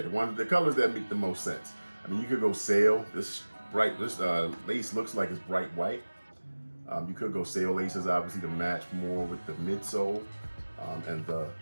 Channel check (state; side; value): inverted; both; correlation -1.00